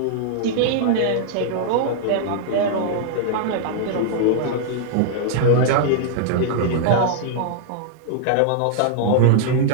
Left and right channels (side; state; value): both; different; correlation -0.01